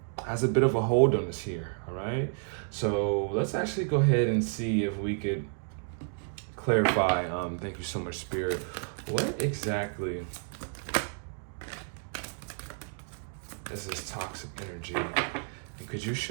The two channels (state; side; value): silent; left; 57 dB below the other